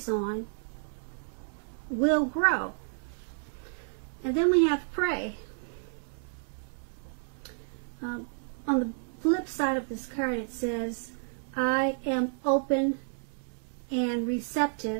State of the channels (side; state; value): left; silent; digital silence